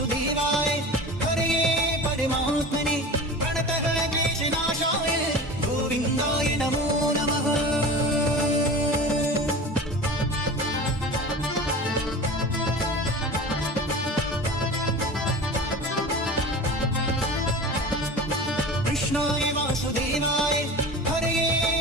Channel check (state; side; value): normal; both; correlation 0.34